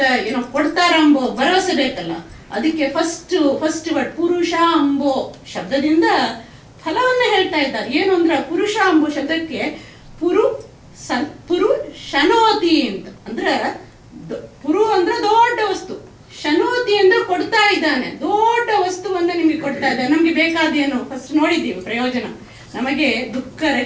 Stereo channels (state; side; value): identical; both; correlation 1.00